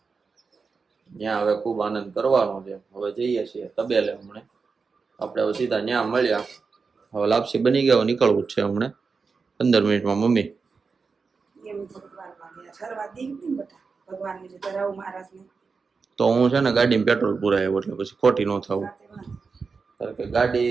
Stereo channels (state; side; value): quieter; left; 4.9 dB